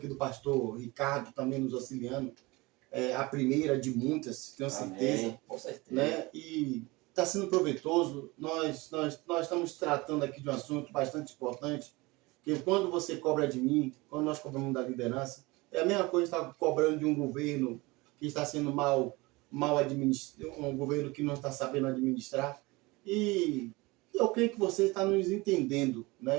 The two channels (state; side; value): quieter; left; 23.1 dB